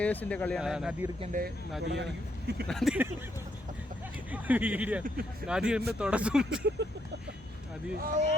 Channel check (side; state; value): both; normal; correlation 0.76